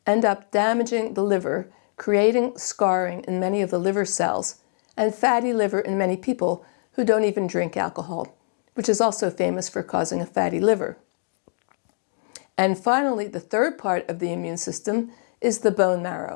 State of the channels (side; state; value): right; silent; digital silence